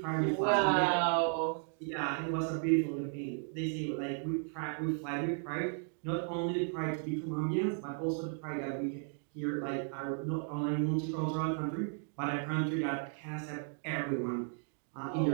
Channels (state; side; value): silent; left; 55 dB below the other